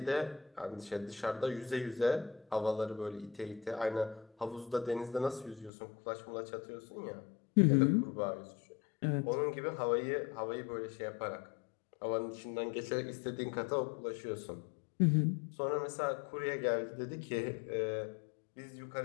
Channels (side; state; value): right; drops out; at 5.7 s